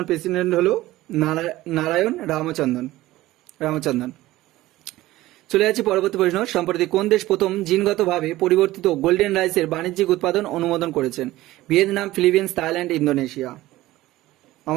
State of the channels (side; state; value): left; quieter; 16.8 dB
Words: প্রেসিডেন্ট হলো নারায়ণ রামচন্দ্রন। চলে যাচ্ছি পরবর্তী প্রশ্ন, সম্প্রতি কোন দেশ প্রথম জিনগতভাবে পরিবর্তিত গোল্ডেন রাইসের বাণিজ্যিক উৎপাদন অনুমোদন করেছেন? Vietnam, Philippines, Thailand, Indonesia.